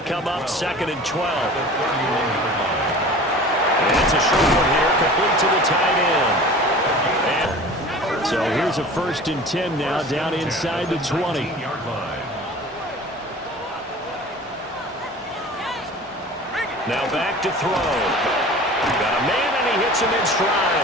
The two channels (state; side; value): normal; both; correlation 0.41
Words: come up 2nd and 12. And it's a short one here, complete to the tight end. And so here's a 1st and 10 now, down inside the 20. Now back to throw. Got a man, and he hits him in